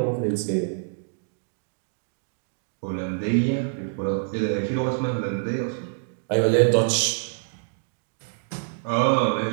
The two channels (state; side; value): silent; left; digital silence